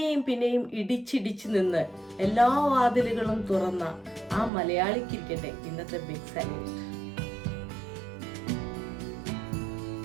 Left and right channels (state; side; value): drops out; left; at 4.5 s